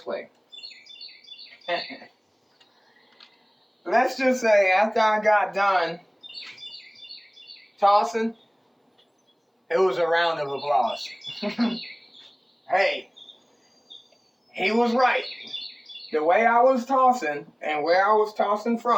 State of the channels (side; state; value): both; identical; correlation 1.00